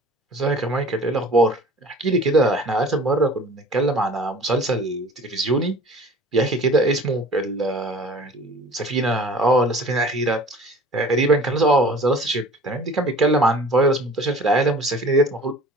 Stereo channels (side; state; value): both; normal; correlation 0.45